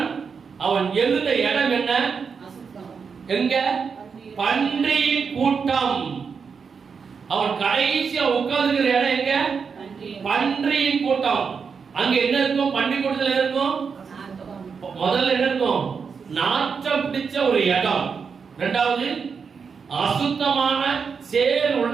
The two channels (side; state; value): left; quieter; 5.8 dB